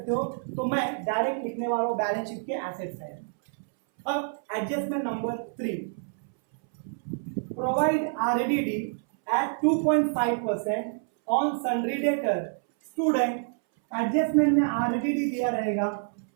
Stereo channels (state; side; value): silent; left; 60 dB below the other